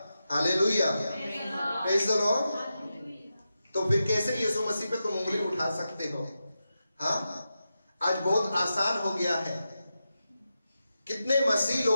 हालेलुया। Praise the lord. तो फिर कैसे यीशु मसीह पे तुम उंगली उठा सकते हो? हाँ, आज बहुत आसान हो गया है। कितने मसीह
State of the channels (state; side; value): inverted; both; correlation -0.90